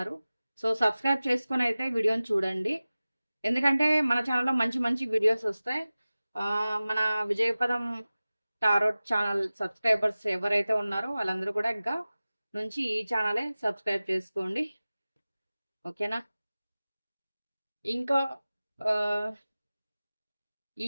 సో సబ్స్క్రైబ్ చేసుకొని అయితే వీడియోని చూడండి. ఎందుకంటే మన ఛానల్లో మంచి మంచి వీడియోస్ వస్తాయి. మన విజయపదం టారోట్ ఛానల్ సబ్స్క్రైబర్స్ ఎవరైతే ఉన్నారో వాళ్ళందరూ కూడా ఇంకా నుంచి ఈ ఛానలే సబ్స్క్రైబ్ చేసుకోండి. ఓకేనా? ఇంకా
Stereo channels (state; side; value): inverted; both; correlation -0.97